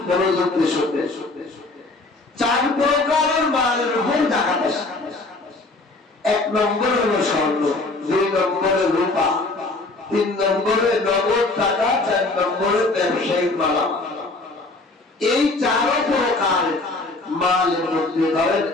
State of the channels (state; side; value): quieter; right; 3.2 dB